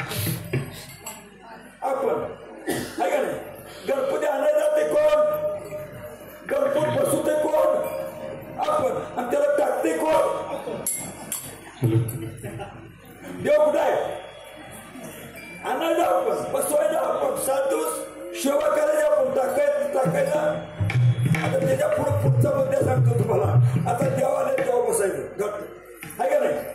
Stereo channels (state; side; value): identical; both; correlation 1.00